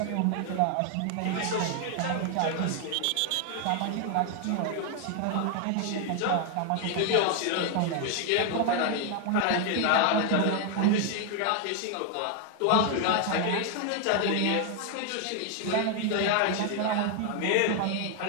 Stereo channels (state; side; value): different; both; correlation 0.00